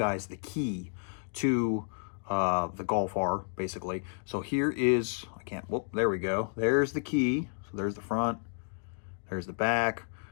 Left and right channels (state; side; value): silent; right; 57 dB below the other